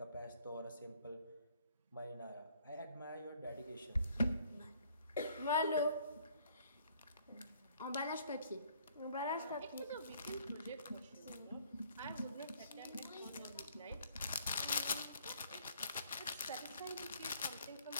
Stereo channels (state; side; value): inverted; both; correlation -0.61